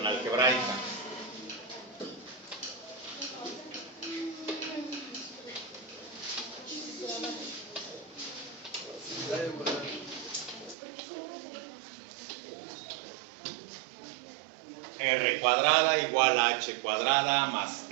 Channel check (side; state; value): left; drops out; at 10.8 s